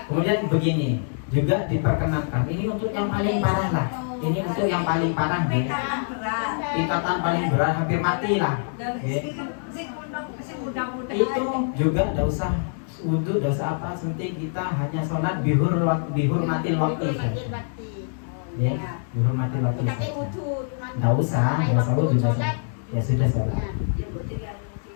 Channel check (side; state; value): right; silent; digital silence